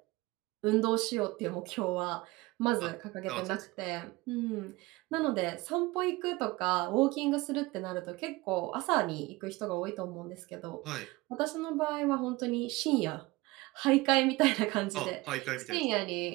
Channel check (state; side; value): quieter; left; 21.6 dB